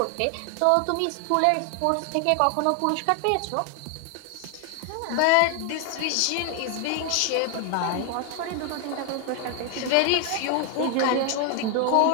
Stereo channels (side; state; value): both; different; correlation 0.01